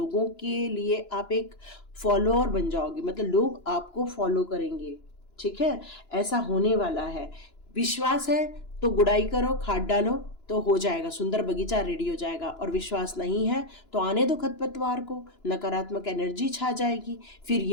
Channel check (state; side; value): late; right; 2.9 ms